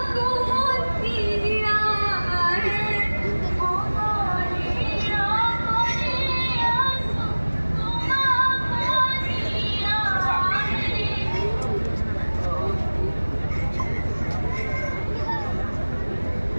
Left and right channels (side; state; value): both; inverted; correlation -1.00